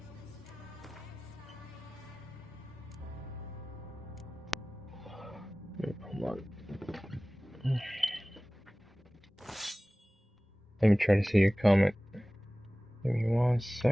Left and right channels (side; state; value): both; normal; correlation 0.98